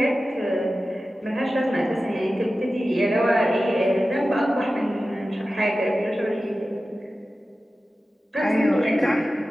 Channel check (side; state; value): both; normal; correlation 0.94